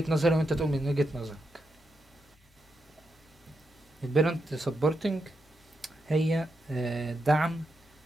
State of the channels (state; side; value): normal; both; correlation 0.84